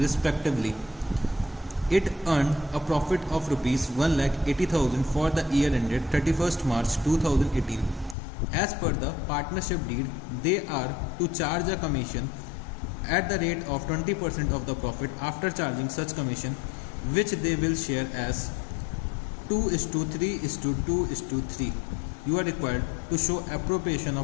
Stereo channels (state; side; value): drops out; right; at 8.2 s